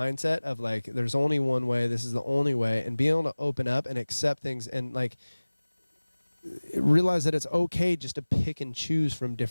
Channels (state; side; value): inverted; both; correlation -1.00